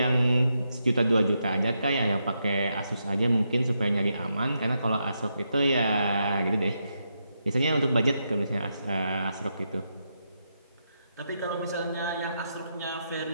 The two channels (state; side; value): inverted; both; correlation -0.83